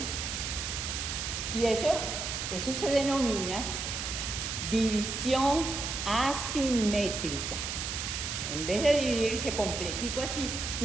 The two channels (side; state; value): right; noise; hiss, 3 dB below the sound